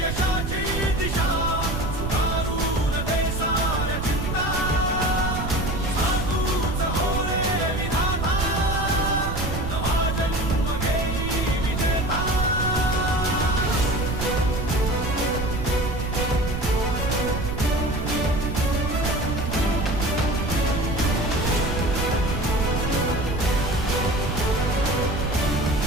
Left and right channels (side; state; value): right; noise; rumble, 3 dB below the sound